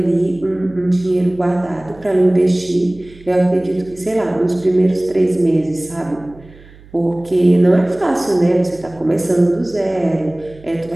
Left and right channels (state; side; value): noise; right; hum, 23 dB below the sound